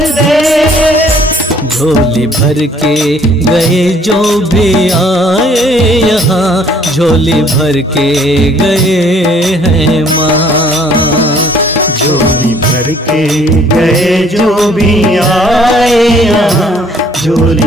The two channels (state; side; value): normal; both; correlation 0.59